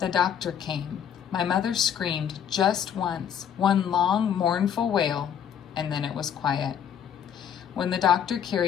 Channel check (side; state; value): right; quieter; 8.7 dB